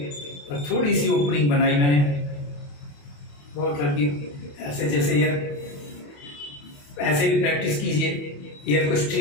और थोड़ी सी ओपनिंग बनाई मैंने बहुत हल्की, ऐसे जैसे एयर, ऐसे भी प्रैक्टिस कीजिए एयर को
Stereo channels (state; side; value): late; right; 28 ms